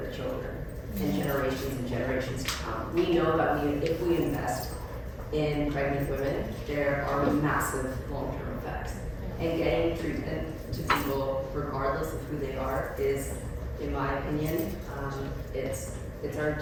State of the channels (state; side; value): identical; both; correlation 1.00